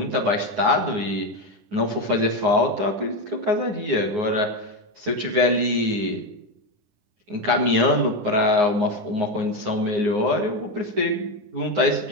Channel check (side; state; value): left; late; 9.6 ms